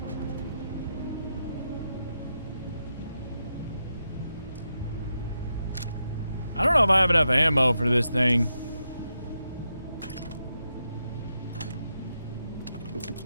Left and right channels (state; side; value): inverted; both; correlation -0.85